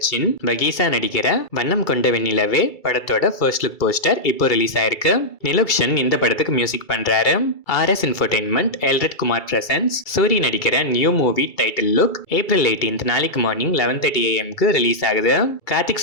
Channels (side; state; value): right; late; 2.3 ms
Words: பகீசா நடிக்கிற வண்ணம் கொண்ட வெண்ணிலவே படத்தோட ஃபர்ஸ்ட் லுக் போஸ்டர் இப்போ ரிலீஸ் ஆயிருக்கு. நிலுக்ஷன் இந்த படத்துக்கு மியூசிக் பண்றாரு. RS entertainment Elred Kumar presents Soori நடிக்கிற new movie title look April 18 நாளைக்கு மார்னிங் 11:30 AM ரீலீஸ் ஆகுது. கார்த்திக்